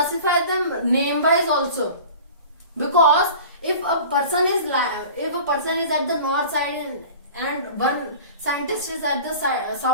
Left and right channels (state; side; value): inverted; both; correlation -0.40